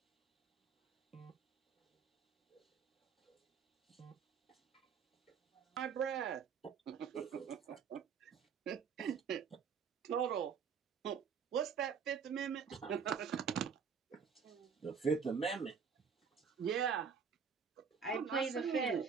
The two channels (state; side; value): quieter; left; 6.4 dB